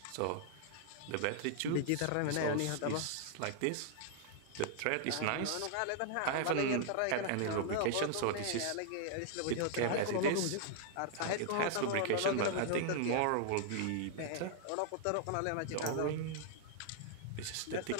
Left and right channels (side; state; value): both; different; correlation 0.00